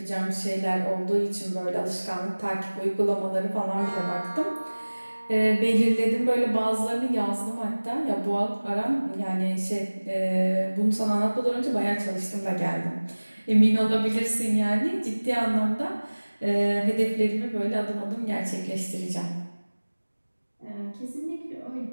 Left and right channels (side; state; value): both; inverted; correlation -1.00